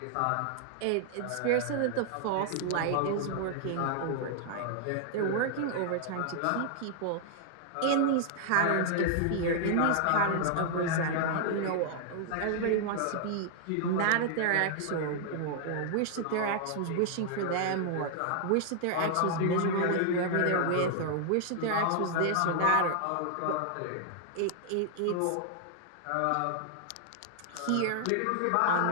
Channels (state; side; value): different; both; correlation -0.01